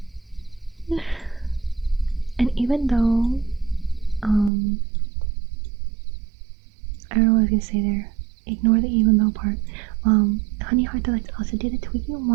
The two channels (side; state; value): left; drops out; at 4.5 s